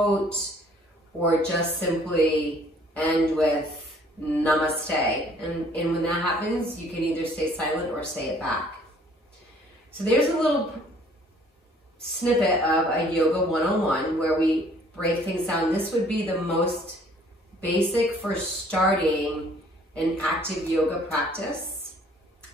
or just simply end with namaste. And when that happens, you can either stay silent or say it back. So there's a little snippet of a yoga 101 where we break things down. This would be the most basic for starting an active yoga practice.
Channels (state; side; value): normal; both; correlation 0.58